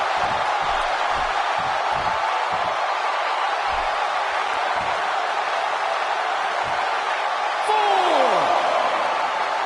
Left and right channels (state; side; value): identical; both; correlation 1.00